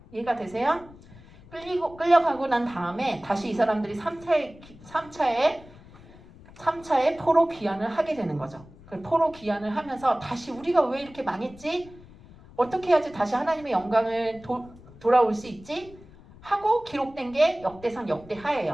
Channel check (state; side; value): noise; left; rumble, 21 dB below the sound